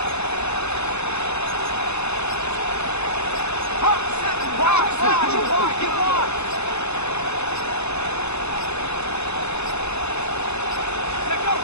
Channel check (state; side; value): late; right; 0.81 ms